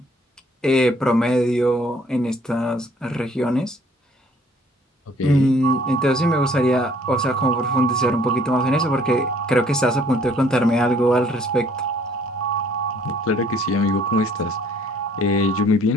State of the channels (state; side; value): normal; both; correlation 0.60